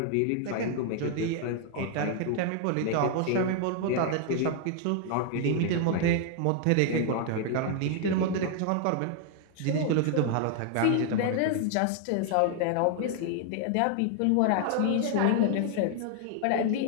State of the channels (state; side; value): different; both; correlation 0.00